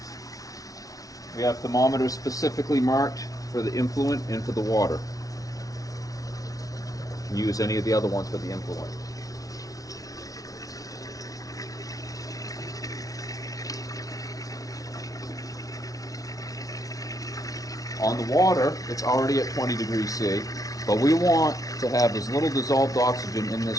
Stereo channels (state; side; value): late; right; 0.18 ms